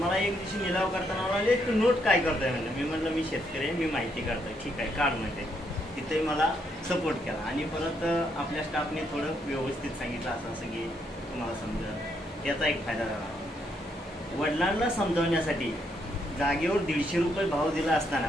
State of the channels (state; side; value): normal; both; correlation 0.75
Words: मला एक दिवशी निलाव करताना म्हणाले तू नोट काय करतोय म्हणलं। मी म्हटलं मी शेतकरी आहे, मी माहिती काढतोय। ठीक आहे काढ म्हणते। तिथे मला सपोर्ट केला आणि परत आपल्या स्टाफने थोडं व्यवस्थित सांगितलं असं असं की तुम्हाला समजेल, त्याचा एक फायदा झाला। वडिलांना समजावण्यासाठी जागेवर 150 रुपये भाव दिला